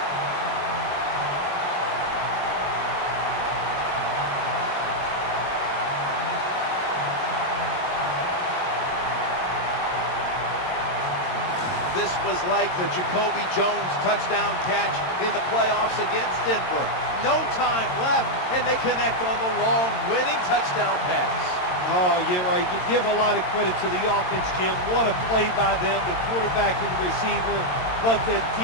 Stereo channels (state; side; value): late; right; 22 ms